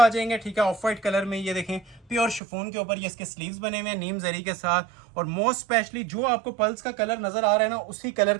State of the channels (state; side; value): drops out; left; at 2.4 s